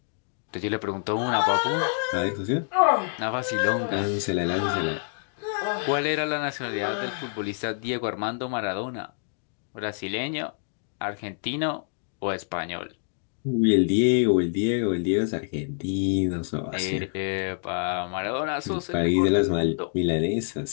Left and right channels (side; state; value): right; silent; digital silence